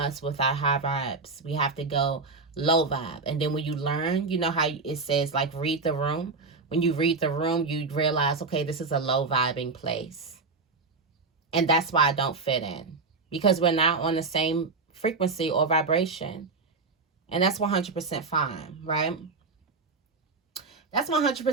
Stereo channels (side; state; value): left; quieter; 4.0 dB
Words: with our high vibes. We have to go low vibe. And then when you learn, you know how it says, like, read the room. When you read the room, you realize, okay, this is a low vibing place. And that's why I don't fit in. Because we're not on the same frequency or vibration. And that's 100% fine, right? That's